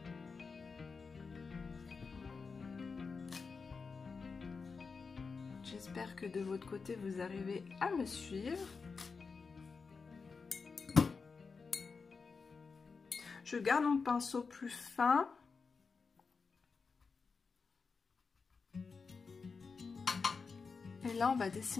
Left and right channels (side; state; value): right; quieter; 4.9 dB